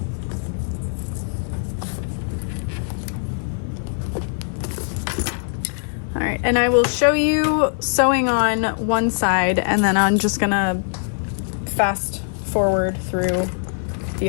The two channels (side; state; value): right; silent; digital silence